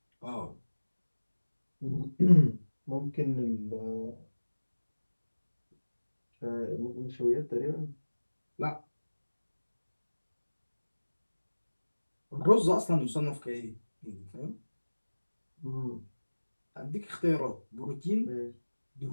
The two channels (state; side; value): inverted; both; correlation -1.00